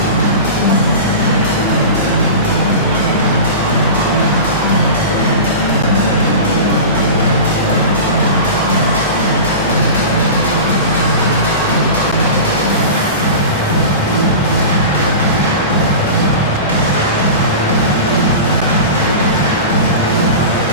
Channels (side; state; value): both; inverted; correlation -0.30